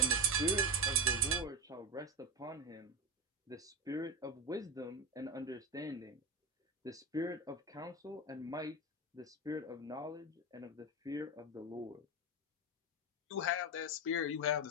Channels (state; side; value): normal; both; correlation 0.17